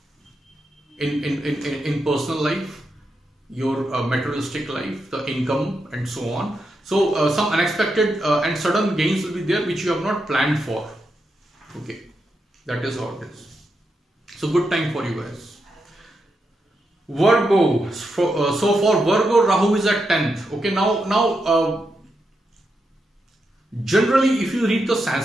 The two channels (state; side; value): normal; both; correlation 0.85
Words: in personal life, your materialistic life, the income, and so on. So some unexpected and sudden gains will be there which you have not planned for. Okay, that is how it is. So good time for you guys. Virgo. So for Virgo, Rahu is at 10th. Okay, now generally if you read the